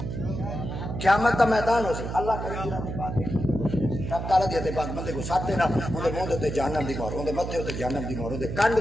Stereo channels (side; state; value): right; noise; hum, 5 dB below the sound